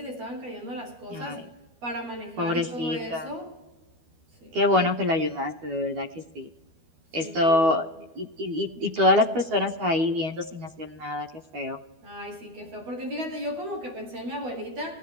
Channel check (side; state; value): left; late; 12 ms